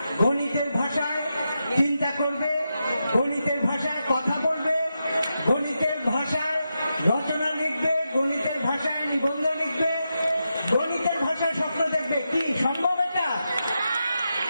গণিতের ভাষায় চিন্তা করবে, গণিতের ভাষায় কথা বলবে, গণিতের ভাষায় রচনা লিখবে, গণিতের ভাষায় নিবন্ধ লিখবে, গণিতের ভাষায় স্বপ্ন দেখবে। কি সম্ভব এটা?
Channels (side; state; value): both; inverted; correlation -0.87